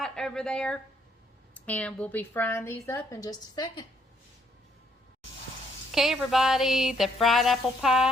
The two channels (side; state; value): both; normal; correlation 0.69